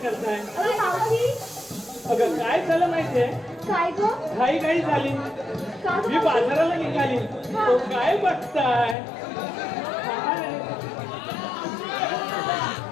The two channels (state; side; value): drops out; right; at 9.0 s